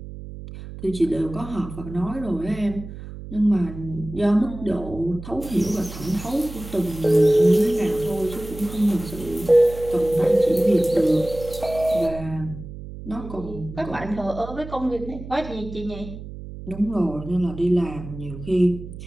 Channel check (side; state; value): right; noise; hum, 12 dB below the sound